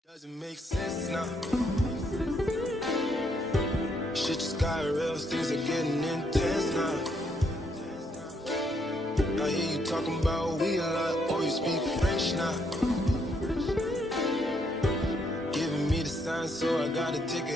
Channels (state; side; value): normal; both; correlation 0.73